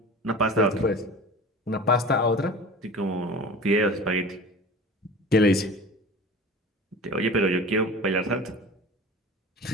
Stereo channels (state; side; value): normal; both; correlation 0.37